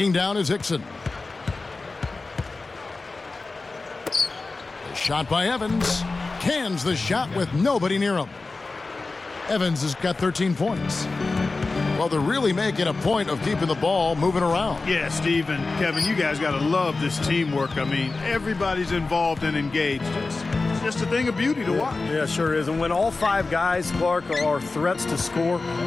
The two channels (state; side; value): quieter; right; 3.7 dB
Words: down is Hickson. The shot by Evans. Cans the shot with nobody near him. Evans has got 13 points. Well, they're really making a point of keeping the ball moving around. Yeah, Steve and Kevin, you guys got to love this teamwork. I mean, everybody's involved and engaged. It's just a thing of beauty to watch. Yeah, sure is. And when all 5 guys, Clark, are threats to score,